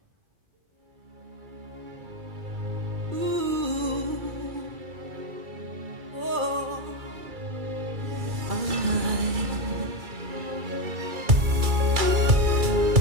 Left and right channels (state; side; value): late; left; 2.3 ms